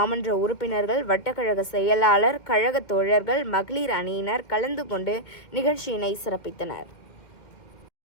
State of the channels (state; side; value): late; right; 2.2 ms